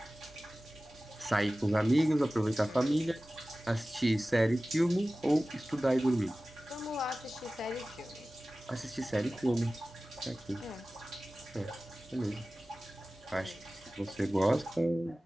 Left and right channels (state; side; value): normal; both; correlation 0.97